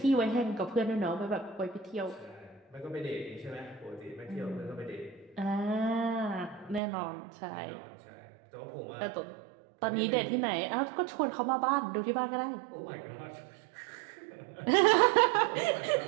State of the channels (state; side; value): drops out; left; at 6.8 s